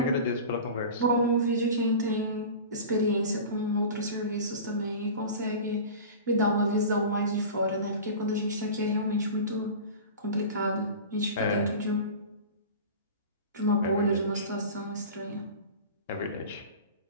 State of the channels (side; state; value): both; inverted; correlation -0.34